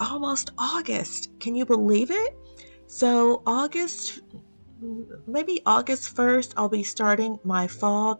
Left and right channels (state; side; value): inverted; both; correlation -1.00